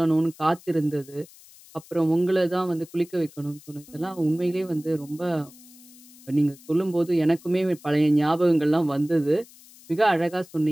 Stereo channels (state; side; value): noise; left; hiss, 23 dB below the sound